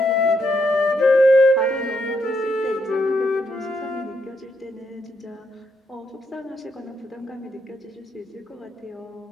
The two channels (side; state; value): both; normal; correlation 0.77